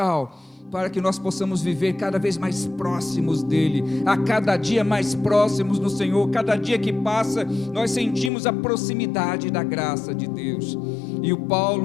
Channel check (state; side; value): drops out; right; at 8.3 s